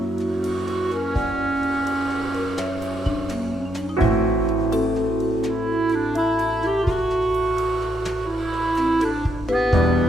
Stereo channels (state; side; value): normal; both; correlation 0.78